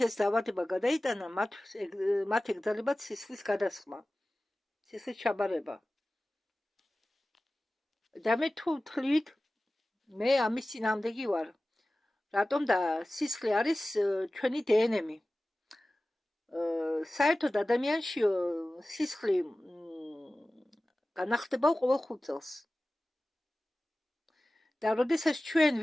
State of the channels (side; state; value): both; normal; correlation 0.96